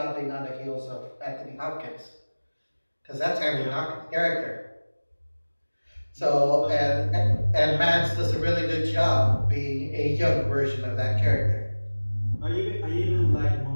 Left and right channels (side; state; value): both; inverted; correlation -1.00